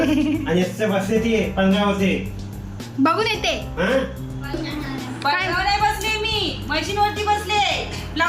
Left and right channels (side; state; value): both; identical; correlation 1.00